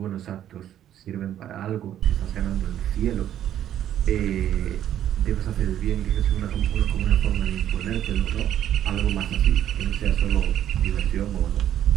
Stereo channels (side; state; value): left; quieter; 11.0 dB